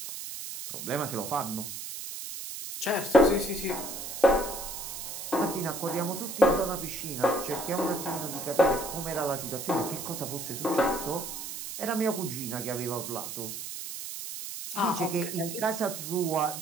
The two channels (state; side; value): noise; right; hiss, 7 dB below the sound